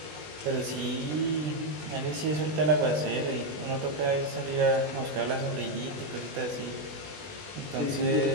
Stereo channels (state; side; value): late; left; 20 ms